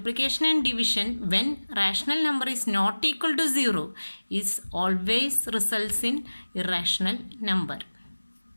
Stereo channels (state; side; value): inverted; both; correlation -1.00